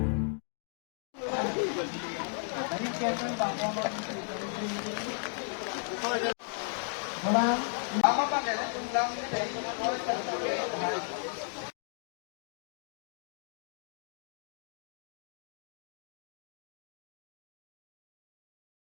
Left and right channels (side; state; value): right; silent; 54 dB below the other